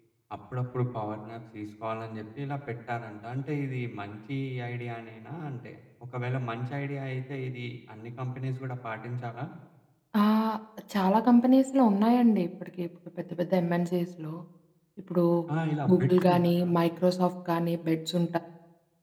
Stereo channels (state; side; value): identical; both; correlation 1.00